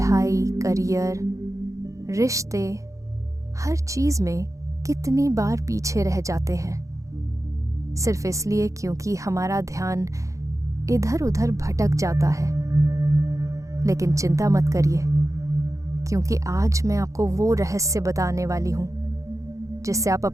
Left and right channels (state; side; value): late; left; 0.15 ms